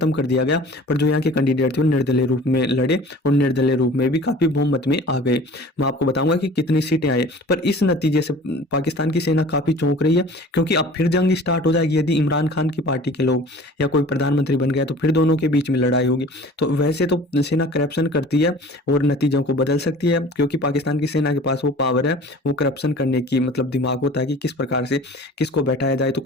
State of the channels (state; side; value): normal; both; correlation 0.44